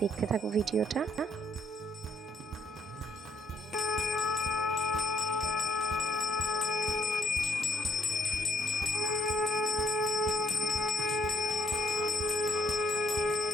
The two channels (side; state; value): both; normal; correlation 0.69